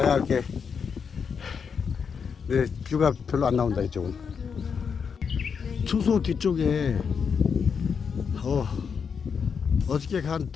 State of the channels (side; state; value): right; quieter; 6.3 dB